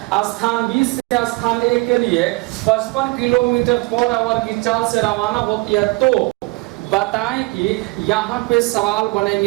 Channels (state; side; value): quieter; left; 24.4 dB